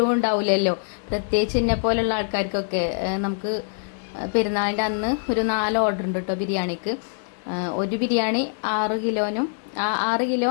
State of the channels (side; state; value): right; silent; 60 dB below the other